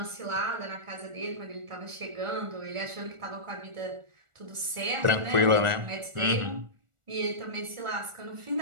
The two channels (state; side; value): late; left; 1.4 ms